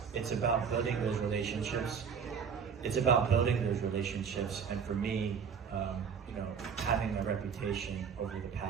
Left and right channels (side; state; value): left; quieter; 6.6 dB